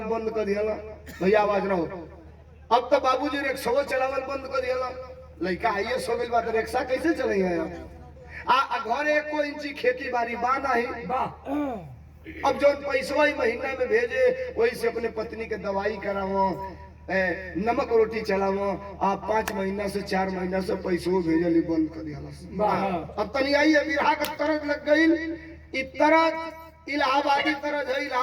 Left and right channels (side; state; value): both; identical; correlation 1.00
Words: बंद कर दिया, भैया आवाज रहो। अब तो बाबूजी रिक्शा चलावल बंद कर दिया, लड़का आइए सो गई बात, रिक्शा कैसे चलेंगे? घरे 1 इंची खेती बाड़ी बाना ही। अब जो पैसा ही महीना में भेजे, वही से अपने पत्नी के दवाई करावो, नमक रोटी चलावो। आप 5 महीना से 4 महीना से पैसों भेजली बंद कर दिया। अब तनी आई बिरहा का तरज लग गई। तरज इलाहाबादी तरज है,